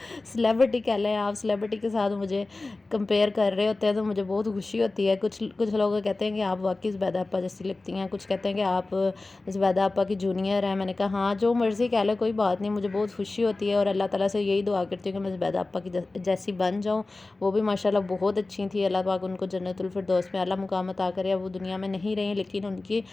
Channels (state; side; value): quieter; right; 3.2 dB